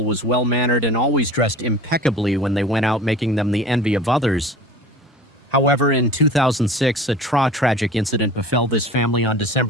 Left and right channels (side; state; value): both; normal; correlation 0.40